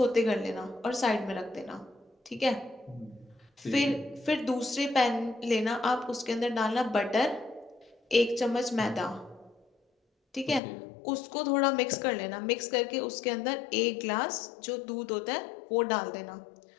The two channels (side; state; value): right; drops out; at 10.6 s